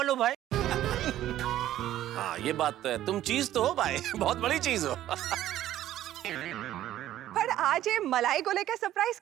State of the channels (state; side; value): quieter; left; 13.1 dB